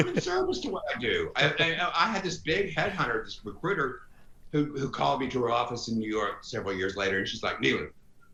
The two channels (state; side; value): identical; both; correlation 1.00